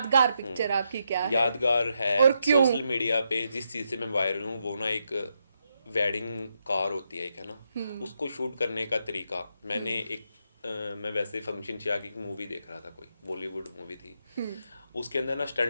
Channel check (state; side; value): inverted; both; correlation -0.81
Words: पिक्चर आपकी क्या है? यादगार है और क्यों? सोशल मीडिया पे जिस चीज़ से मैं वायरल हूँ वो ना एक वेडिंग कार होती है एक, है ना, उसको शूट करने का तरीका मैंने एक मैं वैसे फंक्शन से आके एक मूवी देख रहा था, कोई बॉलीवुड मूवी थी, उसके अंदर ना